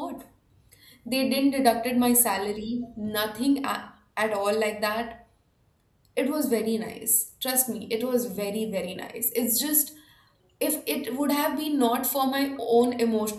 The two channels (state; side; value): identical; both; correlation 1.00